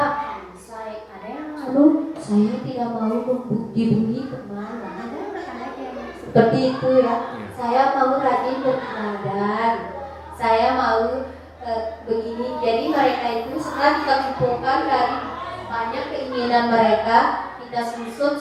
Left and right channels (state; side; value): identical; both; correlation 1.00